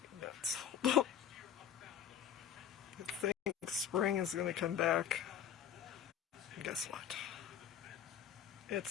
me nuts. I think spring is going to come back. And guess what?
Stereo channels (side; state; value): right; quieter; 9.2 dB